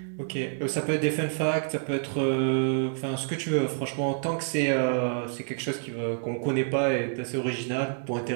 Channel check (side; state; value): left; silent; digital silence